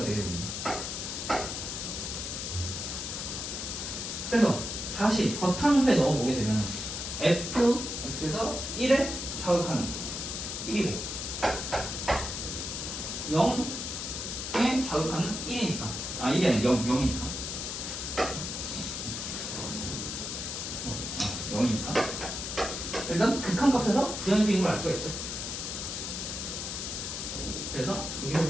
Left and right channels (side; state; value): left; noise; hiss, 5 dB below the sound